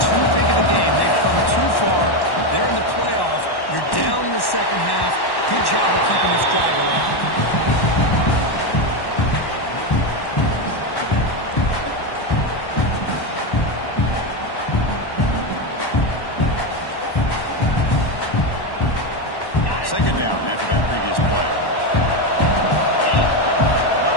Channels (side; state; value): right; late; 1.1 ms